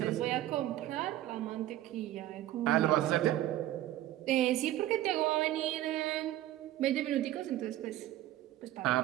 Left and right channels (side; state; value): left; quieter; 14.2 dB